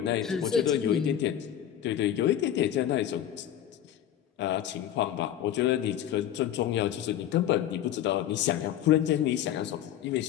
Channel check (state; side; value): quieter; right; 10.9 dB